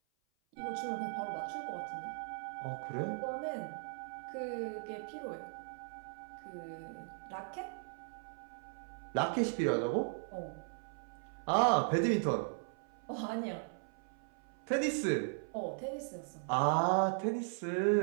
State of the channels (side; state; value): left; silent; 52 dB below the other